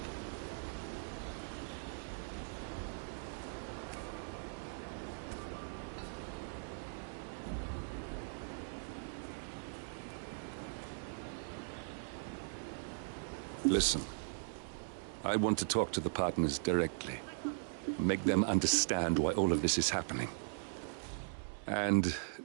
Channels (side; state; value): left; silent; digital silence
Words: Listen, I want to talk to the partners directly. Make them understand why all of this is happening. And